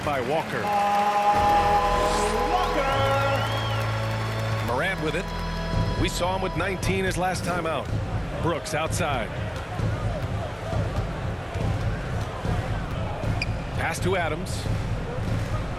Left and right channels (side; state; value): both; identical; correlation 1.00